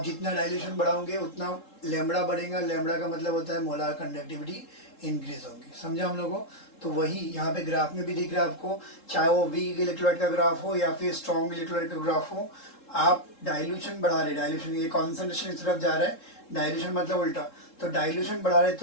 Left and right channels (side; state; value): right; late; 3.7 ms